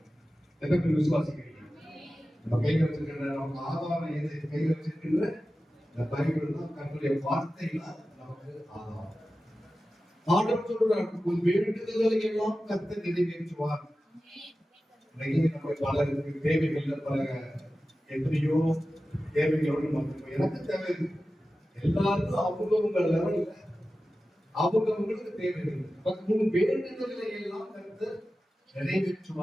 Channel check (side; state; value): both; normal; correlation 0.94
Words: எத்தனை விசுவாசிக்கிறீங்க? நம்ம கையில் வச்சிருக்கிற நம்ம ஆதாரம் எது? கையில் வச்சிருக்கின்ற இந்த பைபிள் தான், கர்த்தருடைய வார்த்தைகள் நமக்கு ஆதாரம். ஆண்டவர் சொல்றார், உன் வேண்டுதல்களை எல்லாம் கர்த்தர் நிறைவேற்றுவார். நம்ம பலருக்கு தேவைகள் பல எத்தனையோ தேவைகளோடு நமக்கு எனக்கு தேவை எல்லாருக்கும் அவங்கவுங்க லெவல்ல அவங்கவுங்களுக்கு தேவைகள் வேண்டுதல்களை எல்லாம் கருத்து